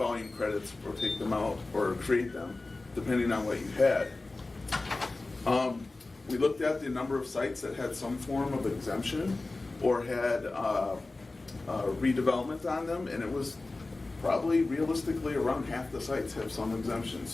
credits or take them out or create them, depending on what you had. We looked at the number of sites that had some form of exemption or had redevelopment on them, and it was probably realistically around half the sites have some exemption.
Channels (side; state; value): right; quieter; 3.2 dB